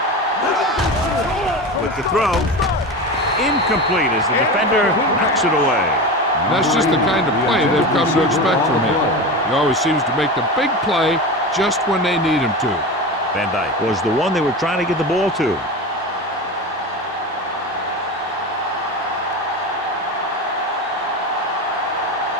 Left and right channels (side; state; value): both; normal; correlation 0.25